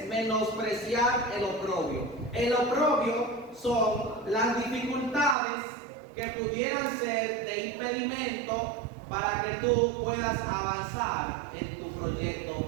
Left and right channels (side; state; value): left; drops out; at 5.4 s